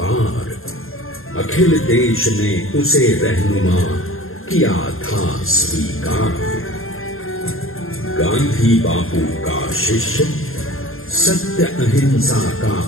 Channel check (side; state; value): right; late; 0.61 ms